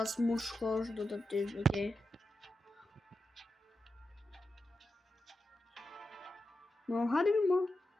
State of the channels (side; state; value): both; normal; correlation 0.89